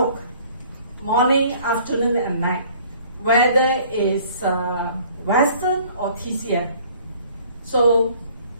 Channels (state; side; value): inverted; both; correlation -0.55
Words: morning, afternoon, and night, whether it's Western or TCM. So